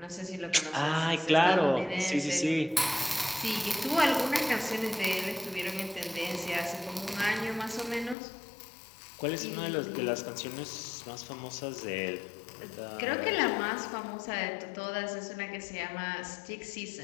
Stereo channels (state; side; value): drops out; right; at 8.2 s